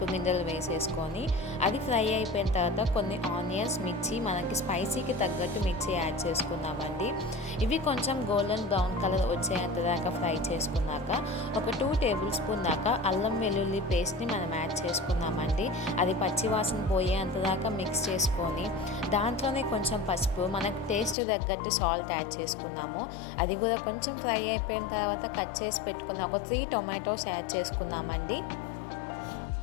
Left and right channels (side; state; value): right; drops out; at 21.2 s